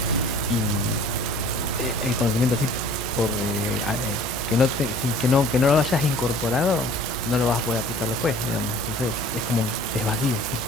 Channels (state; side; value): normal; both; correlation 0.49